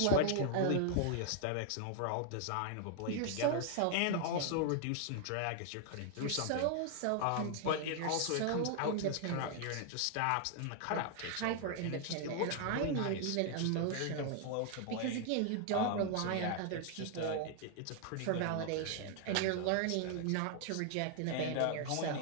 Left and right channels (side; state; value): both; different; correlation 0.00